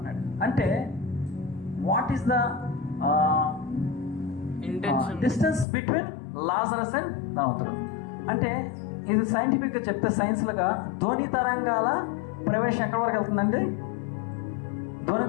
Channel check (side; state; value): right; drops out; at 5.7 s